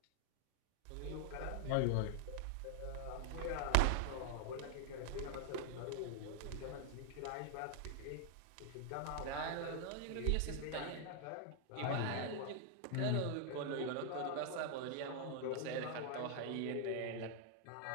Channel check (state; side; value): different; both; correlation 0.00